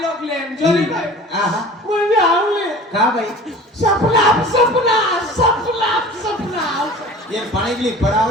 लोक लेन जोली भाई आहा मुझे आवले का भाई सपना ये पानी के लिए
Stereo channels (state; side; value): normal; both; correlation 0.41